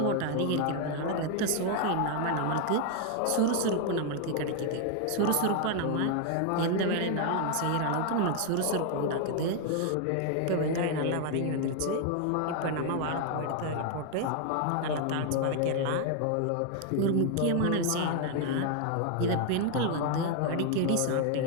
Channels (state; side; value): different; both; correlation 0.00